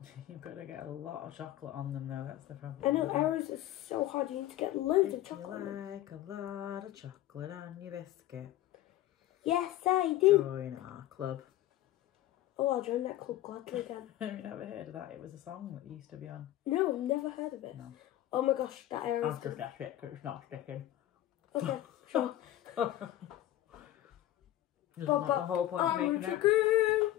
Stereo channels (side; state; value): right; quieter; 14.0 dB